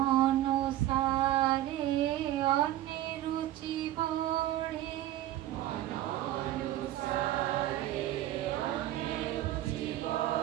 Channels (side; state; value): left; quieter; 14.0 dB